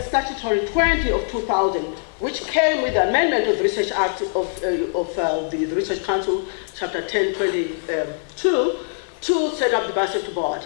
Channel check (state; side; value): silent; right; 55 dB below the other